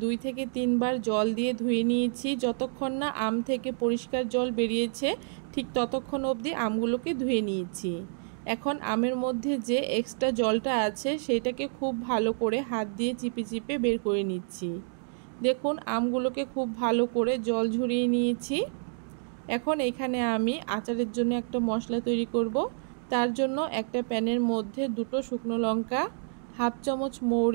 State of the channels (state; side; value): silent; left; digital silence